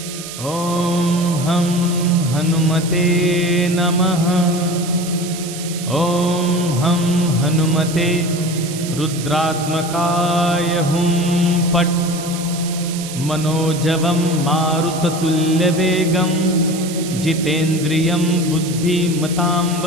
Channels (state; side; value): noise; right; hiss, 11 dB below the sound